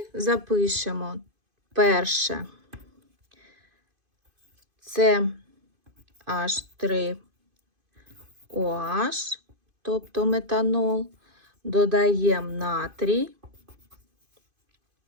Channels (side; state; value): left; late; 2.5 ms